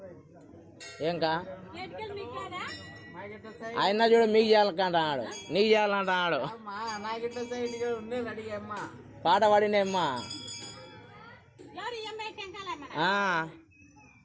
ఏంకా ఆయన చూడ మీకు చేయాలంటాడు నీకు చేయాలంటాడు పాట పాడినమ్మా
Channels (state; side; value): identical; both; correlation 1.00